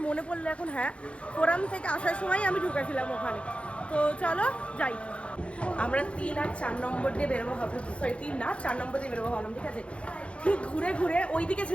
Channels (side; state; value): right; late; 0.060 ms